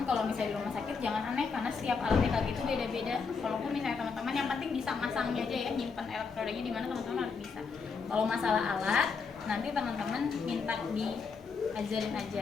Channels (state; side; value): quieter; right; 5.2 dB